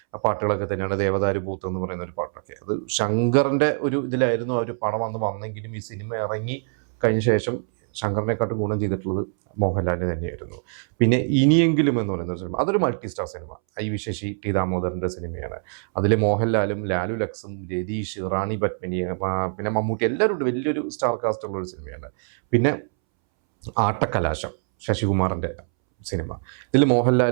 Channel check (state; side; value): silent; left; 63 dB below the other